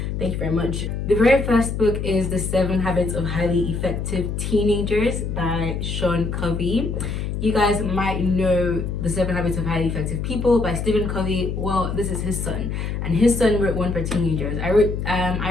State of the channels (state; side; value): noise; left; hum, 3 dB below the sound